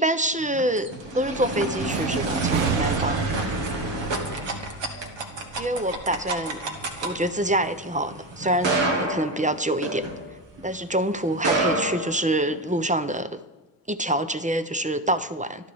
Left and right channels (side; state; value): both; normal; correlation 0.19